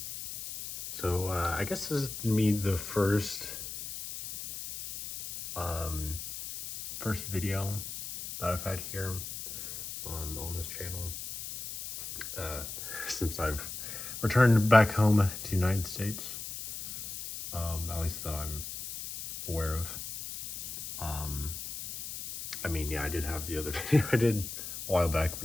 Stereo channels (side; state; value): left; noise; hiss, 8 dB below the sound